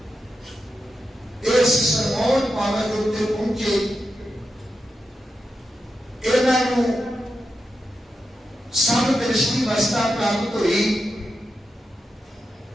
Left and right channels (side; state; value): both; normal; correlation 0.88